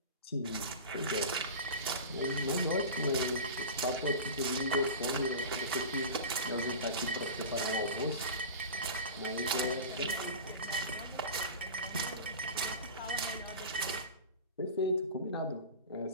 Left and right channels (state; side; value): inverted; both; correlation -0.31